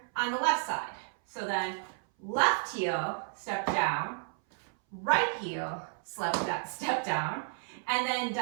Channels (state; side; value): silent; left; 56 dB below the other